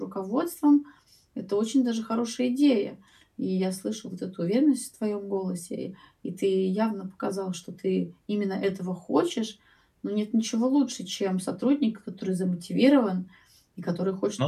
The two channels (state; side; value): identical; both; correlation 1.00